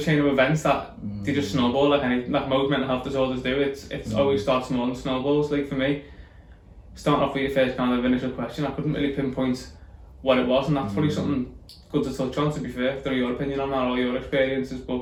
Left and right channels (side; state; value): both; identical; correlation 1.00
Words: a chain of events that they just snowball like most mental health disorders do. It's always starts small and snowballs. Like for me, starting off with your first kind of initial question, I couldn't really pinpoint what it was, and that's probably something good to touch on, to be fair. Don't know your opinion on that or your experiences,